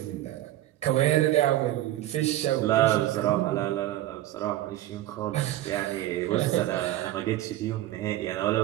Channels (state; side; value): quieter; left; 14.3 dB